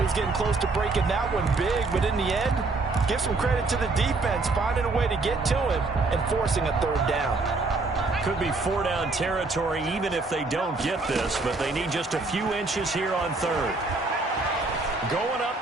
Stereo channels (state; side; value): quieter; left; 3.6 dB